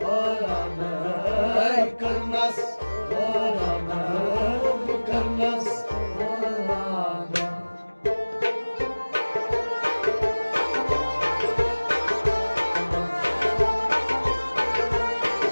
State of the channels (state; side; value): inverted; both; correlation -1.00